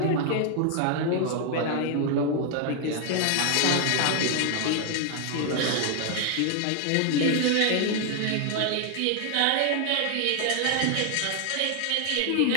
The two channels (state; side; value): different; both; correlation 0.00